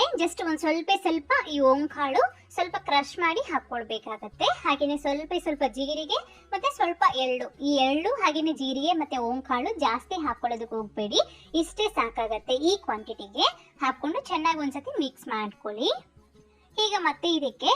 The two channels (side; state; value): both; identical; correlation 1.00